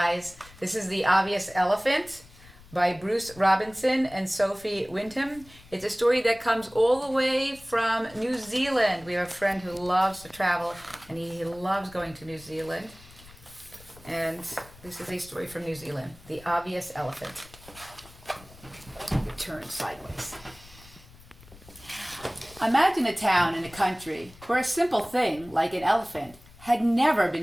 this is The Obvious Elephant by Bruce Robinson and Sophie Wyndham. It's a story that comes all the way from New Zealand. We have a friend who loves to travel and he loves going to New Zealand. And this is a story from New Zealand, The Obvious Elephant. Turn sideways. Imagine a town in the country where a simple thing like an elephant had never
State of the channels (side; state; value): left; noise; rumble, 22 dB below the sound